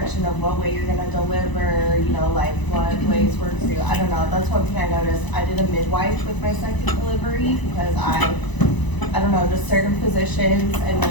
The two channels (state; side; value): late; right; 1.0 ms